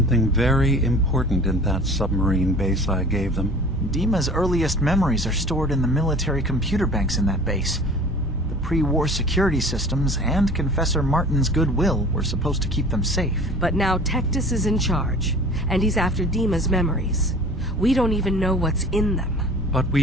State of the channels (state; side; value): normal; both; correlation 0.44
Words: very important in that submarine base I gave them. Dima's earliest memories are stored in the military computer banks in that base. Pre-war security systems and Confessor Martin's goodwill were supposed to keep them safe. But now Tectus is in charge, and he's after Dima's memories. We don't even know what's in them. But we